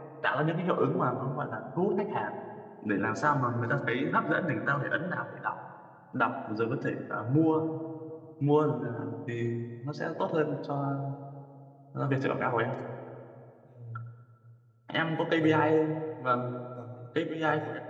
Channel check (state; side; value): identical; both; correlation 1.00